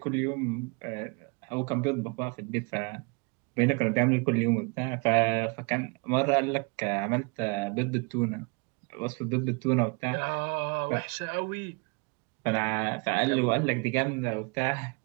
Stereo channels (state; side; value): quieter; left; 31.9 dB